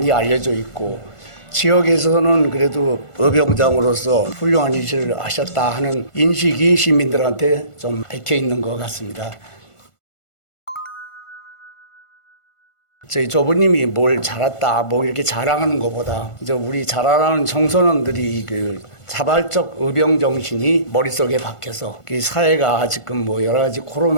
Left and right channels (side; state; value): right; late; 1.5 ms